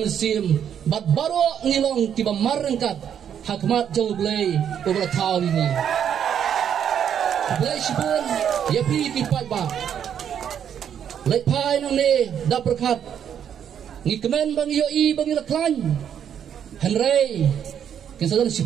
bat baro ngilong tiba marengkat hakmat jaublei obra taw ini blai sibun ya pi kipat ba lepai nang ne da berkat ngi kemen bang yo I bang laklan henry kesadan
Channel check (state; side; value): quieter; left; 8.8 dB